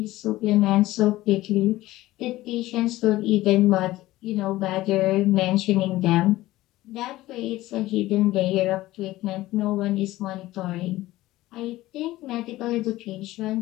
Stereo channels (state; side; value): quieter; right; 16.9 dB